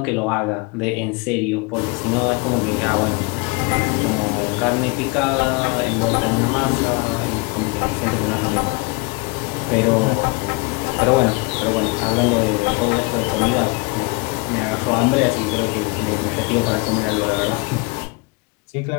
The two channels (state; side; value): quieter; right; 27.0 dB